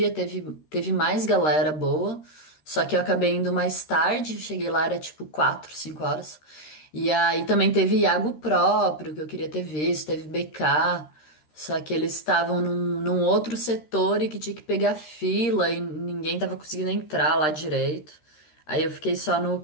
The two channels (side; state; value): right; late; 13 ms